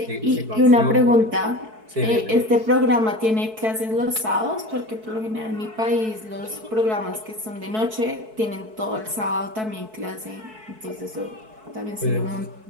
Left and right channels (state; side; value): late; left; 4.6 ms